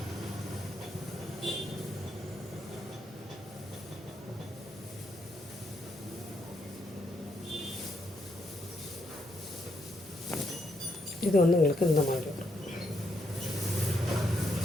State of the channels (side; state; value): both; normal; correlation 0.78